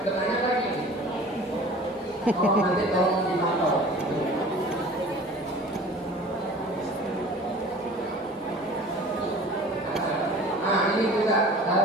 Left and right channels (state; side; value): normal; both; correlation 0.43